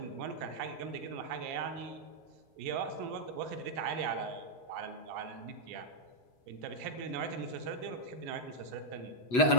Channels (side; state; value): right; late; 8.1 ms